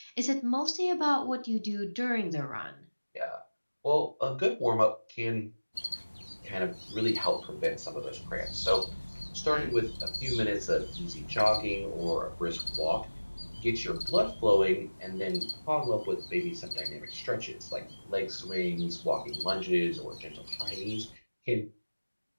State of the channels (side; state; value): both; inverted; correlation -1.00